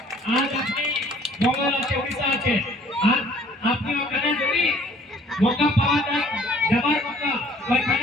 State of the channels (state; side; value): normal; both; correlation 0.56